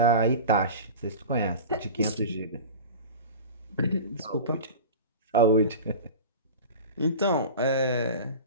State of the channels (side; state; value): both; inverted; correlation -0.32